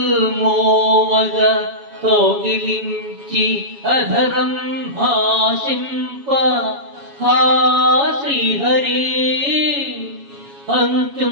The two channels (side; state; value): left; late; 7.2 ms